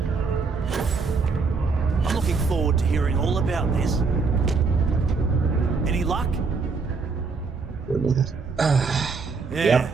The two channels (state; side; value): quieter; left; 4.6 dB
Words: I'm looking forward to hearing all about this. Any luck? Yeah,